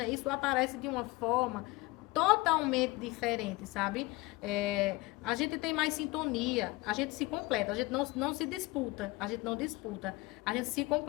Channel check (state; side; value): quieter; right; 22.1 dB